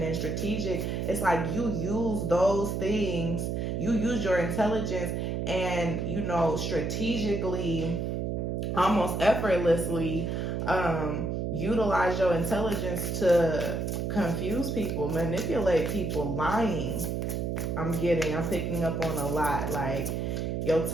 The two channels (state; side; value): noise; right; hum, 1 dB below the sound